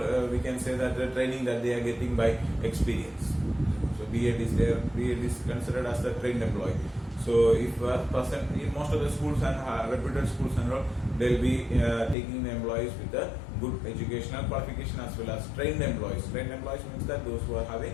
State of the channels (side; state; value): right; drops out; at 12.2 s